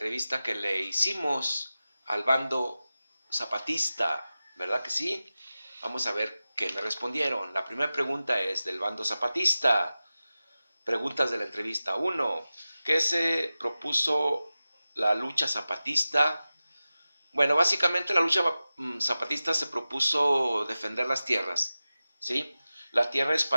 que le hicimos al bando zapatista, ¿verdad que sí? Vamos a ver qué me respondieron. La primera pregunta es del bando zapatista. Preguntas de la entrevista 1. ¿Qué se propuso la lucha zapatista? Bueno, básicamente la lucha zapatista se propuso defender las tierras, ¿sí? La tierra es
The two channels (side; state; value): both; inverted; correlation -0.95